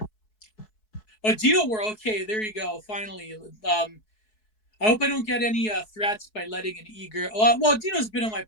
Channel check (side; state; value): right; late; 4.7 ms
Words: oh, Dino, we're okay. There you go. Finally, I hope I don't get any threats by letting an e-girl. Well, Dino's been on my